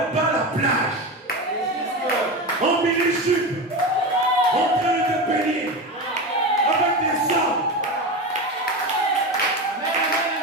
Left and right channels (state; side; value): normal; both; correlation 0.22